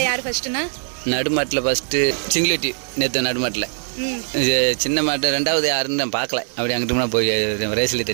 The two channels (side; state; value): left; silent; 61 dB below the other